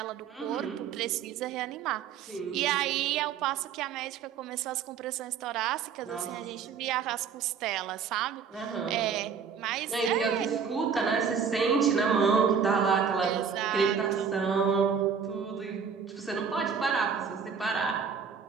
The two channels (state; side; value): quieter; left; 6.6 dB